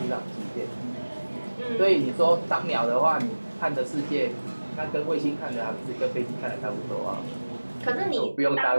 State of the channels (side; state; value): both; inverted; correlation -1.00